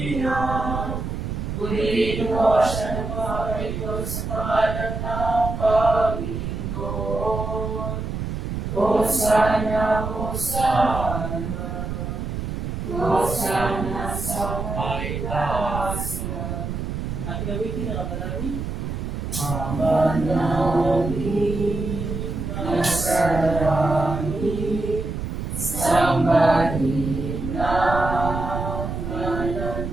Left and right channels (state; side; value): noise; right; rumble, 4 dB below the sound